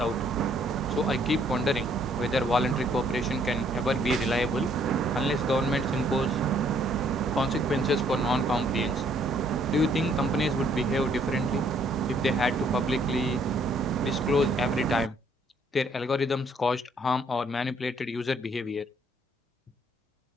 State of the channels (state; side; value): normal; both; correlation 0.65